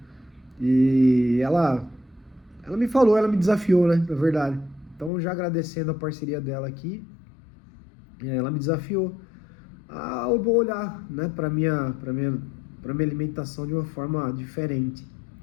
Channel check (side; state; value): right; drops out; at 5.1 s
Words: e ela me falou, ela me desafiou, né? Na verdade. Então, já agradecendo a parceria dela aqui, ela me desafiou a olhar, né, para minha alimentação de uma forma diferente.